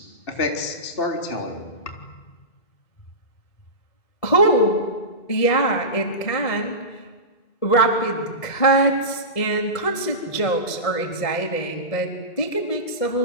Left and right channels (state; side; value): late; right; 1.7 ms